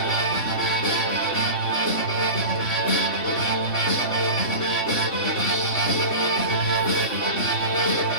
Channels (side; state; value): right; late; 2.7 ms